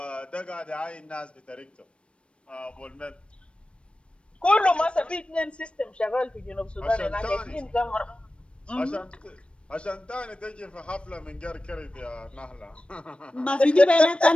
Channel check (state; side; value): late; right; 0.059 ms